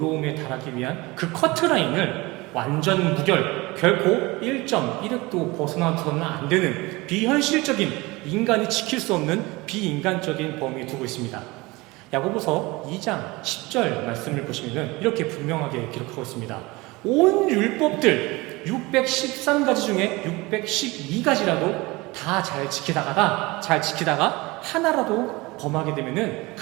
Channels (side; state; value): left; quieter; 22.7 dB